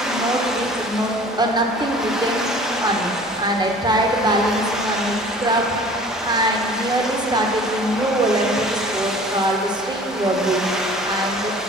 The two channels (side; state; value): both; normal; correlation 0.47